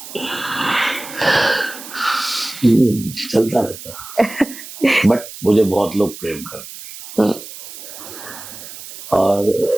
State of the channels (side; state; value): right; noise; hiss, 14 dB below the sound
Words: चलता रहता बट मुझे बहुत लोग प्रेम करते हैं।